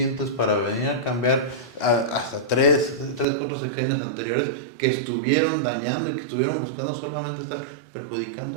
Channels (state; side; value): drops out; left; at 3.2 s